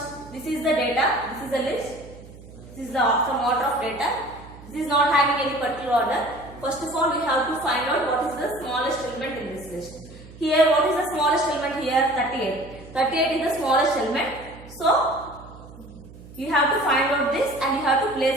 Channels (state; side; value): noise; right; hum, 18 dB below the sound